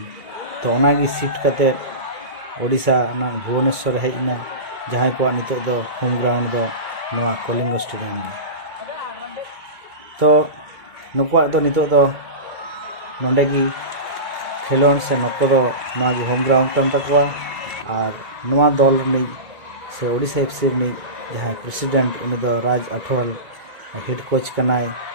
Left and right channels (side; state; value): left; late; 1.9 ms